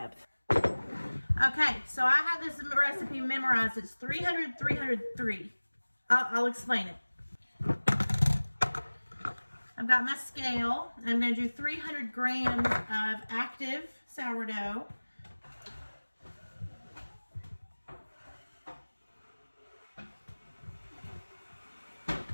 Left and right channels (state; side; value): inverted; both; correlation -1.00